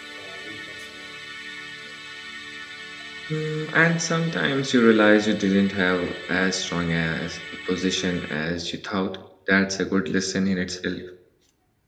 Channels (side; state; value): both; identical; correlation 1.00